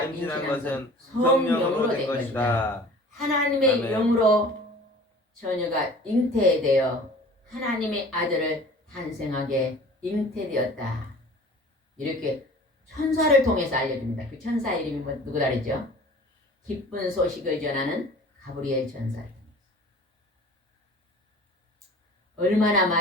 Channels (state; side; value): normal; both; correlation 0.45